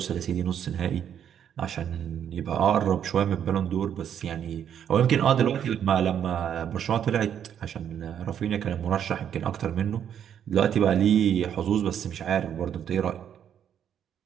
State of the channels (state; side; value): quieter; left; 9.1 dB